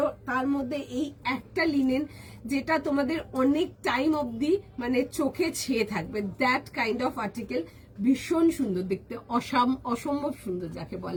তার মধ্যে এই একটা লিনেন যেটা তোমাদের অনেক টাইম অবধি মানে চোখে ছেয়ে থাকবে, দ্যাট কাইন্ড অফ আর্টিকেল, ভীষণ সুন্দর দেখতে, অসম্ভব সুন্দর যাকে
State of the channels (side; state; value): both; identical; correlation 1.00